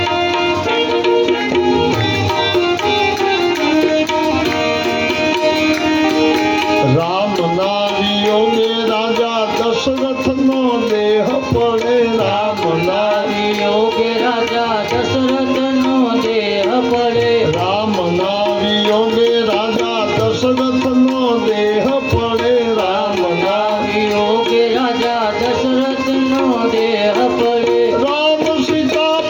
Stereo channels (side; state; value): both; identical; correlation 1.00